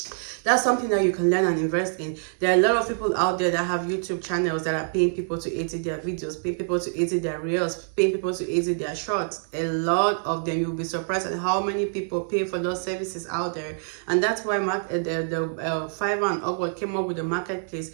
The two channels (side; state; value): left; silent; digital silence